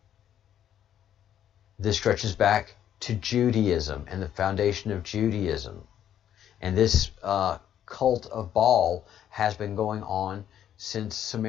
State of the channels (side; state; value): right; quieter; 10.3 dB